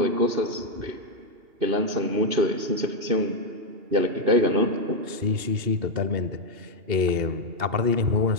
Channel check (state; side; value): late; left; 2.8 ms